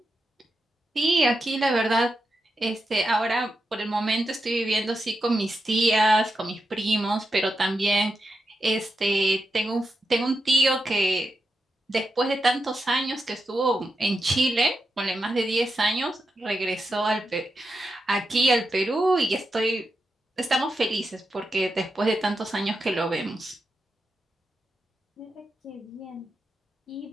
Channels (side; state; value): both; normal; correlation 0.87